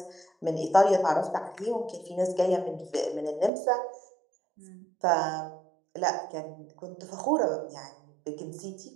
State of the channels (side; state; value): left; drops out; at 3.5 s